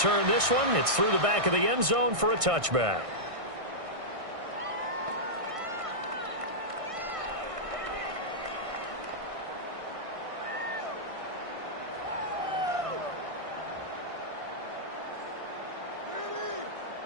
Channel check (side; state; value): left; late; 1.6 ms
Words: this one. It's through the back of the end zone for a touchback.